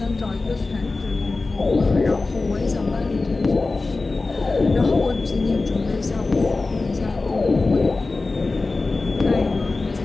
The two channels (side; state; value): right; quieter; 3.6 dB